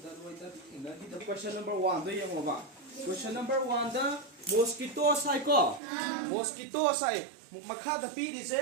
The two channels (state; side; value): drops out; left; at 5.8 s